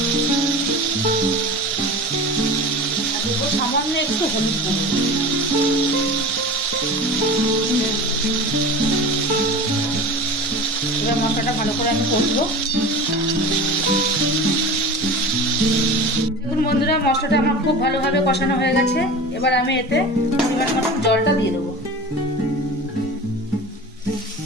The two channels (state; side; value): normal; both; correlation 0.33